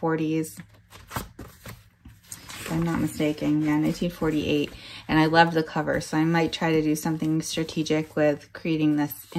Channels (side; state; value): both; identical; correlation 1.00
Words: 40s. If I'm not mistaken. Yeah, 1948. And I love the cover. So I might try to do something strategic with creating this